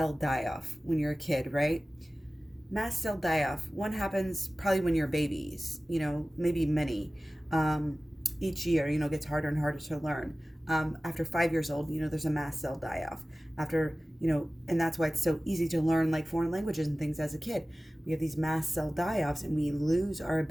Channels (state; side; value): normal; both; correlation 0.97